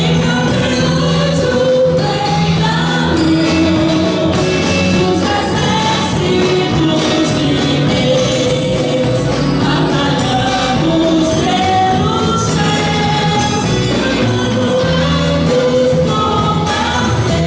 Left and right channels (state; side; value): identical; both; correlation 1.00